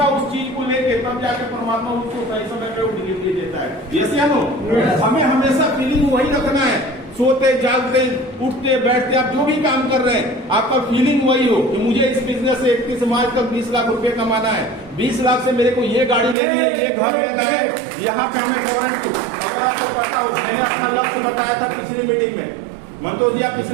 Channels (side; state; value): left; drops out; at 16.4 s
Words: उस चीज को लेके, तब जाके परमात्मा उसको सही समय पे डिलीवरी देता है। यस या नो? हमें हमेशा फीलिंग वही रखना है। सोते जागते उठते बैठते आप जो भी काम कर रहे हैं, आपका फीलिंग वही हो कि मुझे इस बिजनेस से 31 मार्च तक 20 लाख रुपए कमाना है, 20 लाख से मेरे को ये गाड़ी लेनी है, ये घर लेना है, यहाँ पे हमें फॉरेन टू। अगर आपको पता हो, मैंने अपना लक्ष्य बताया था पिछली मीटिंग में। मंतोष जी, आप